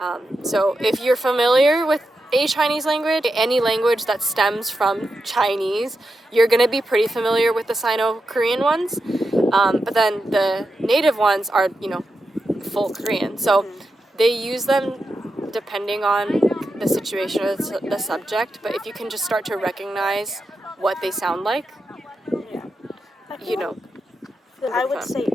So if you're familiar with a Chinese language, any language that stems from Chinese, you're going to be pretty familiar with the Sino-Korean ones. But then the native ones are, full Korean. So they use them depending on the situation or the subject. But if you can just start to recognize what they sound like, I would say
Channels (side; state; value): both; normal; correlation 0.88